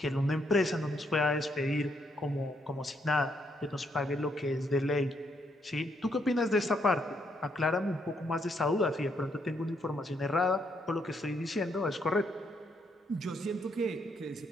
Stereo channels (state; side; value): normal; both; correlation 0.75